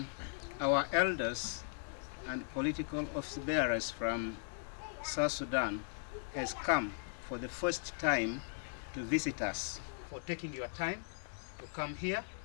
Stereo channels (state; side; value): silent; right; digital silence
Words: our elders and political office bearers from South Sudan has come for the first time to visit us, for taking your time to come here